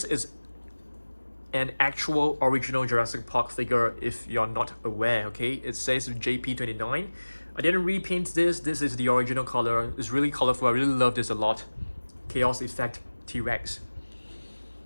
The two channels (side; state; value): both; inverted; correlation -1.00